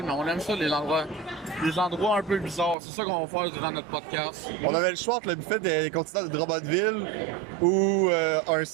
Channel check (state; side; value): drops out; left; at 2.8 s